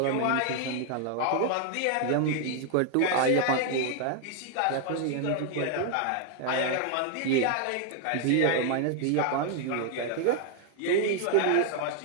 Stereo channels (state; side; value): different; both; correlation 0.00